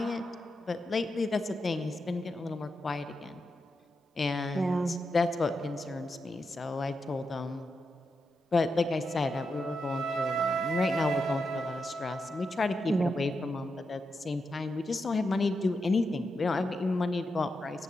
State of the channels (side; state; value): both; normal; correlation 0.86